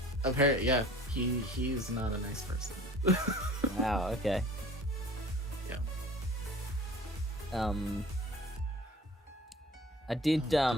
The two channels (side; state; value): both; normal; correlation 0.46